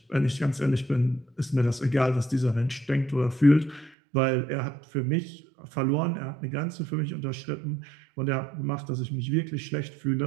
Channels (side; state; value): left; drops out; at 3.9 s